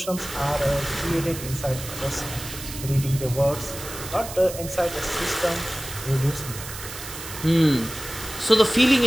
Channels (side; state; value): right; noise; hiss, 11 dB below the sound